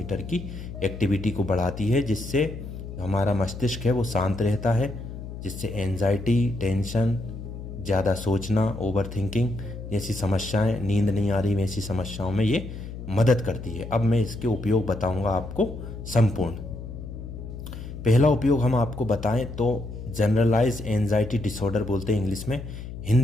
की एक्टिविटी को बढ़ाती है, जिससे हमारा मस्तिष्क है वो शांत रहता है, जिससे एंजाइटी, टेंशन, ज़्यादा सोचना, ओवर थिंकिंग जैसी समस्याएं, नींद नहीं आ रही वैसी समस्याओं में ये मदद करती है। अब मैं इसके उपयोग बताऊंगा आपको संपूर्ण। पहला उपयोग हम आपको बताएं तो जनरलाइज एंजाइटी डिसऑर्डर बोलते हैं इंग्लिश में।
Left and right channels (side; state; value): left; noise; hum, 10 dB below the sound